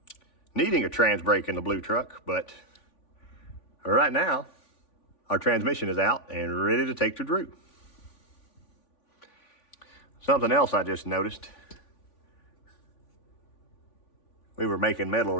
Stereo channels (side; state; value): right; late; 3.5 ms